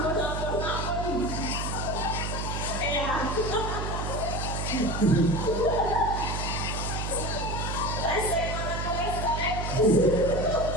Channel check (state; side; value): noise; right; hum, 3 dB below the sound